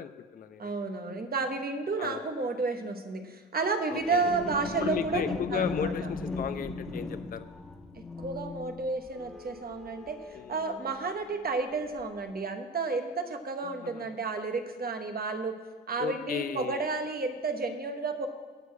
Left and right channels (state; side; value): normal; both; correlation 0.30